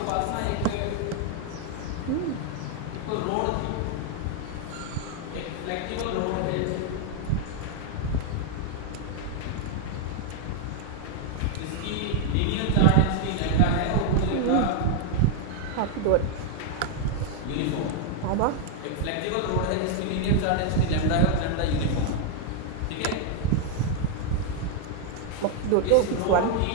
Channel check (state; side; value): different; both; correlation 0.00